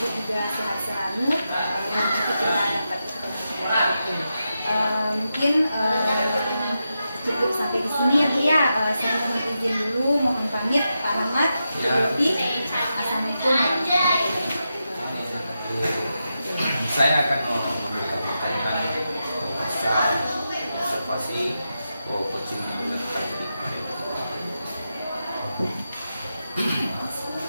juga sehat selalu, dan nanti kita dapat ketemu. Mungkin sini ya Bu ya. Saya mohon izin dulu, mohon pamit Pak Rahmat. Ya. Assalamualaikum. Saya akan memberikan pertanyaan pasal observasi coaching yang dilakukan dari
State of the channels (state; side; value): inverted; both; correlation -0.88